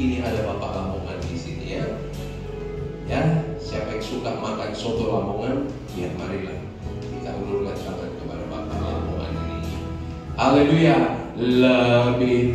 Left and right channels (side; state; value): both; identical; correlation 1.00